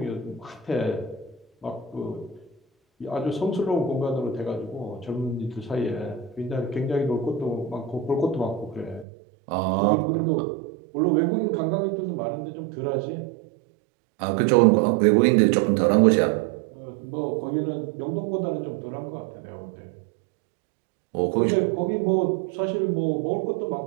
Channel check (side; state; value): left; drops out; at 9.1 s